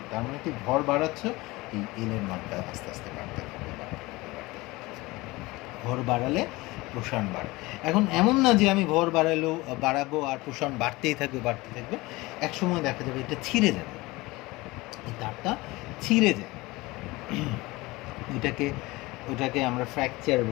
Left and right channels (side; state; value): right; quieter; 21.5 dB